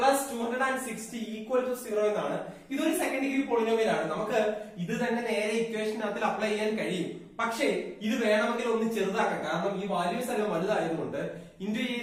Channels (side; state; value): both; identical; correlation 1.00